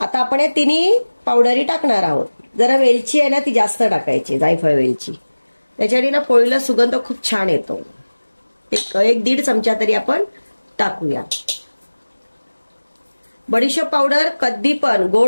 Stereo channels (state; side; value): inverted; both; correlation -1.00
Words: आपण या 3 पावडरी टाकणार आहोत. जरा वेलची आहे ना ती जास्त टाकायची, जायफळ वेलची, त्याच्याने ना पोळीला सुगंध खूप छान येतो. एक 1.5 चमचा तरी आपण टाकूया. बडीशोप पावडर, कधी पण